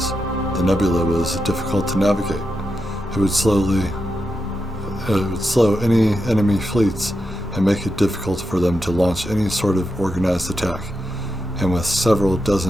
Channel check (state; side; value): normal; both; correlation 0.87